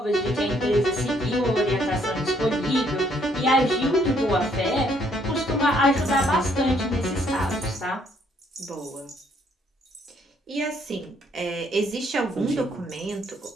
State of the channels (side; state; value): both; normal; correlation 0.68